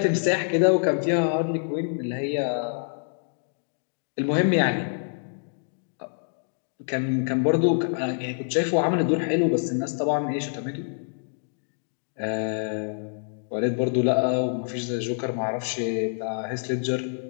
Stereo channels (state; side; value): silent; right; digital silence